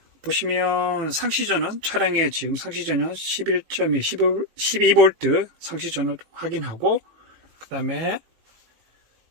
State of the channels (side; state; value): left; late; 18 ms